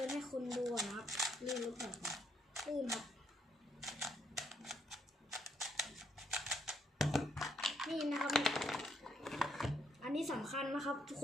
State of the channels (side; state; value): both; normal; correlation 0.72